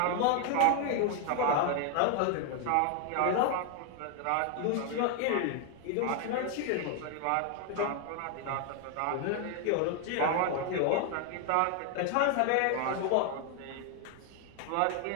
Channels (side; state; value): both; different; correlation 0.00